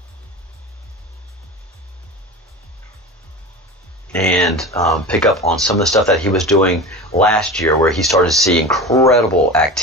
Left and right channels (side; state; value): both; normal; correlation 0.30